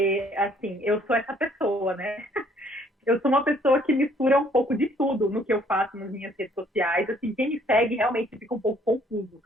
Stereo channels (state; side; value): normal; both; correlation 0.62